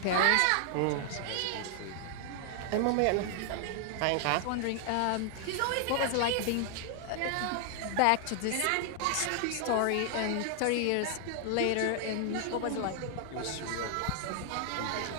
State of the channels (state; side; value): different; both; correlation 0.00